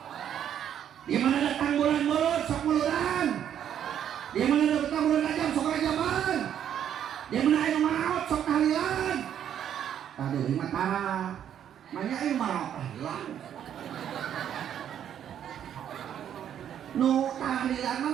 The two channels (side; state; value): left; quieter; 9.7 dB